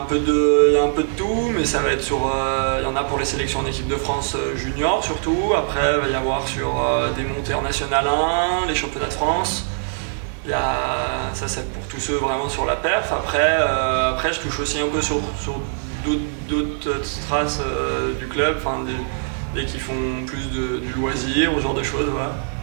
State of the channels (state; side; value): silent; left; digital silence